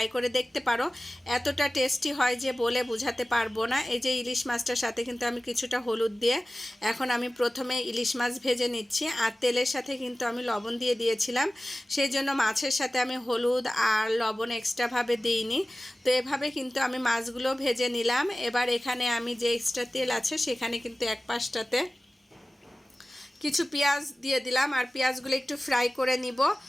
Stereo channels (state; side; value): normal; both; correlation 0.96